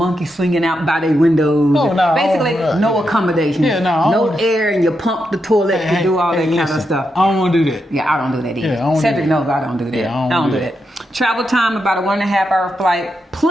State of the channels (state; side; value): normal; both; correlation 0.84